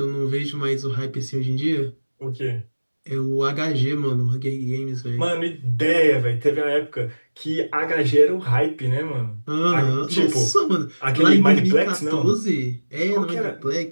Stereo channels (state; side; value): inverted; both; correlation -1.00